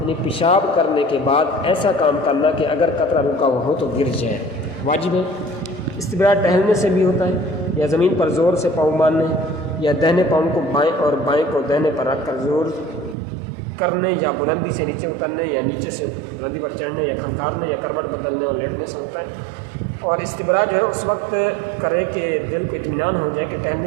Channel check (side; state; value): left; drops out; at 13.2 s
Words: یعنی پیشاب کرنے کے بعد ایسا کام کرنا کہ اگر قطرہ رکا ہوا ہو تو گر جائے، واجب ہے۔ استبرا ٹہلنے سے بھی ہوتا ہے، یا زمین پر زور سے پاؤں مارنے، یا دہنے پاؤں کو بائیں اور بائیں کو دہنے پر رکھ کر زور کرنے، یا بلندی سے نیچے اترنے، یا نیچے سے بلندی پر چڑھنے، یا کھنکارنے، یا کروٹ بدلنے اور لیٹنے سے ہوتا ہے۔ اور استبرا جو ہے اس وقت کرے کہ دل کو اطمینان ہو جائے کہ